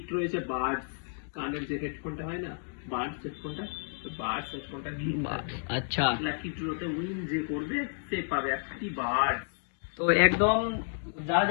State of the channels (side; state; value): right; silent; digital silence